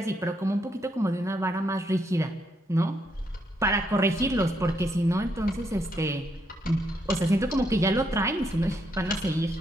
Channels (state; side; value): normal; both; correlation 0.76